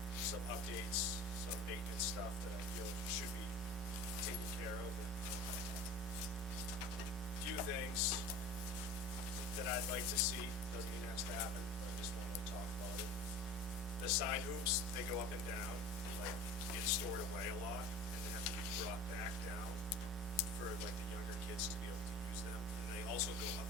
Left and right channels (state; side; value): normal; both; correlation 0.39